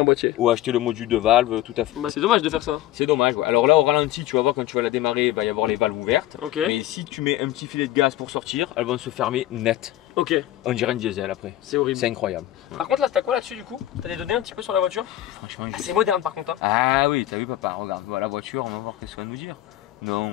boîtier. Ou acheter le module de valve, tout à fait. Bah, c'est dommage de faire ça. C'est dommage. Ouais. Alors là, au ralenti, tu vas voir quand tu vas la démarrer, il va y avoir les valves ouvertes. Ok. Mais si tu mets un petit filet de gaz pour sortir, elles vont se fermer net. Ok. On dirait un diesel après. C'est horrible. C'est incroyable. Par contre, là, t'as quoi là-dessus du coup? T'as des données un petit peu sur la voiture? Franchement, Ah, c'est moderne par contre. Hein. Ah oui, t'as vu papa, regarde, voilà la voiture, on va voir qu'est-ce qu'elle va nous dire. Non,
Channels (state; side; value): quieter; right; 14.1 dB